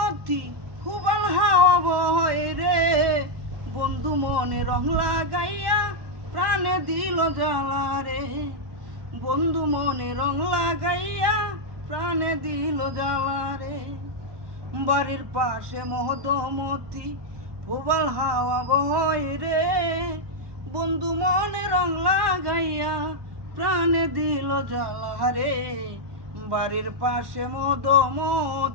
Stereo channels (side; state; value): left; late; 1.1 ms